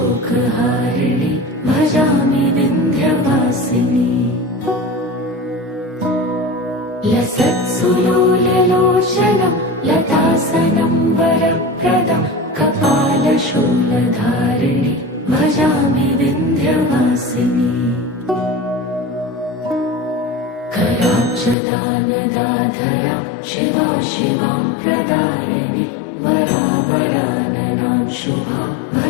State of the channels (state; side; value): drops out; right; at 21.6 s